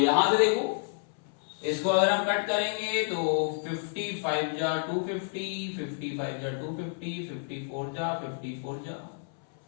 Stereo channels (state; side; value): silent; right; 58 dB below the other